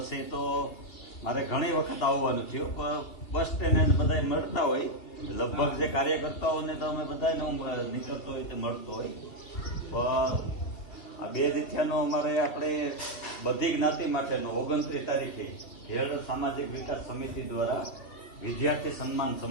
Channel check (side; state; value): right; late; 2.8 ms